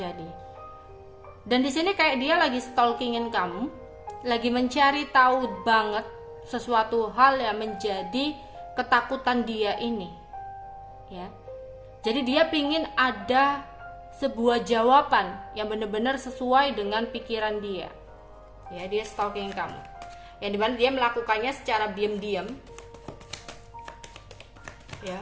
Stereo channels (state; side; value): identical; both; correlation 1.00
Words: Dan di sini kayak dia lagi stalkingin kamu, lagi mencari tahu banget sesuatu hal yang menjadi ketakutan dia ini. Ya. Jadi dia pingin ada sebuah jawaban yang benar-benar sesuai dengan pikiran dia. Ya, dia stalking kamu. Yang dimana dia melakukannya secara diam-diam.